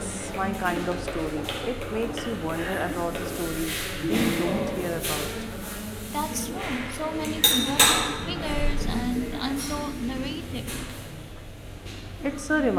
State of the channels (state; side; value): identical; both; correlation 1.00